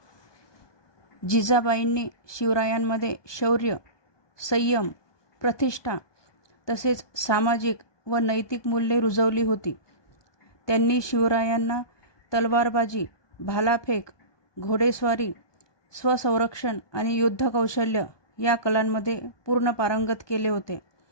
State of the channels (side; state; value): right; late; 1.2 ms